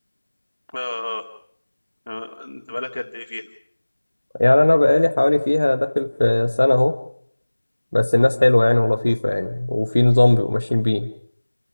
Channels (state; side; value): inverted; both; correlation -1.00